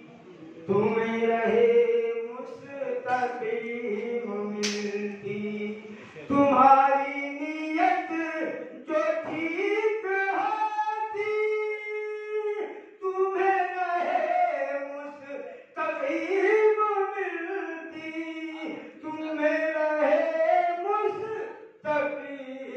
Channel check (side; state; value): both; identical; correlation 1.00